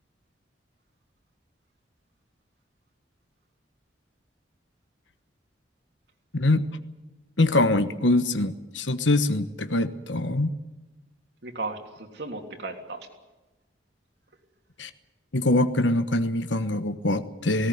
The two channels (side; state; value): both; normal; correlation 0.46